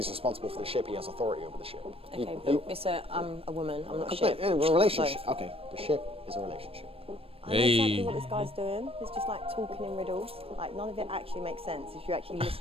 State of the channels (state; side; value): late; left; 0.28 ms